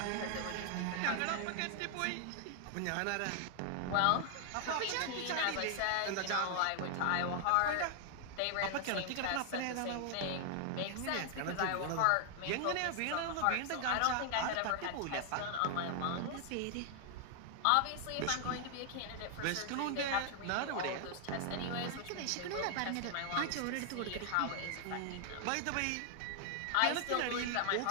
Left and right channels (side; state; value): both; different; correlation 0.00